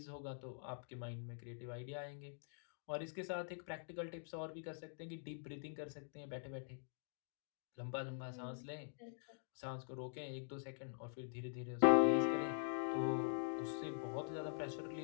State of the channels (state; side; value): silent; right; digital silence